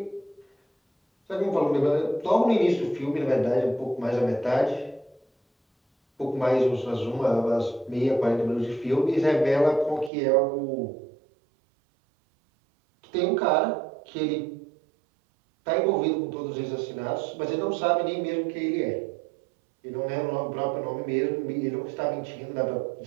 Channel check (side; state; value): left; drops out; at 10.1 s